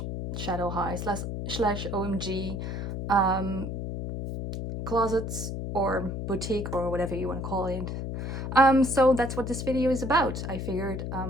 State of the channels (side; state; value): left; noise; hum, 4 dB below the sound